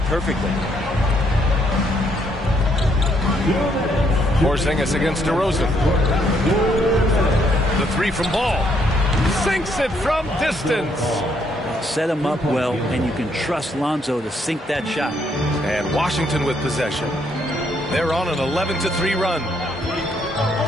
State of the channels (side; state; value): both; normal; correlation 0.71